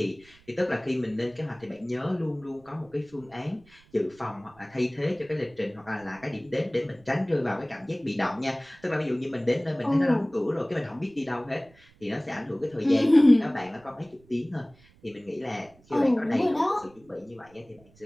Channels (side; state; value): right; noise; rumble, 28 dB below the sound